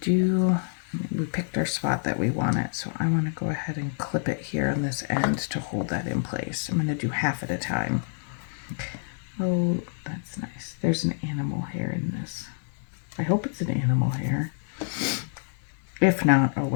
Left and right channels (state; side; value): silent; right; digital silence